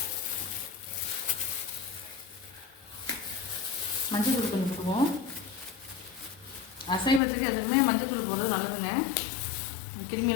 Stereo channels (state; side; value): drops out; right; at 7.2 s